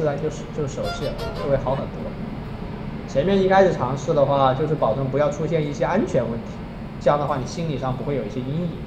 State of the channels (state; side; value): identical; both; correlation 1.00